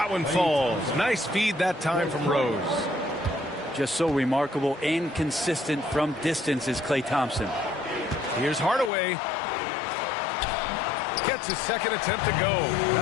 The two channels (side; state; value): right; drops out; at 8.9 s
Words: one falls. Nice feed that time from Rose. Just so remarkable and consistent from distance is Klay Thompson. Here's Hardaway. Gets his second attempt to go.